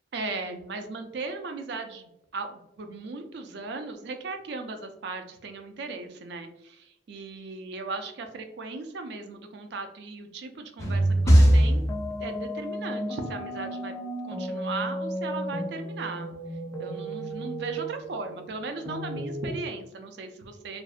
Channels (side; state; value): both; normal; correlation 0.80